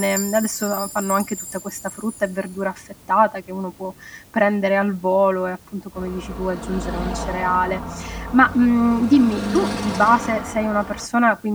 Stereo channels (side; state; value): both; identical; correlation 1.00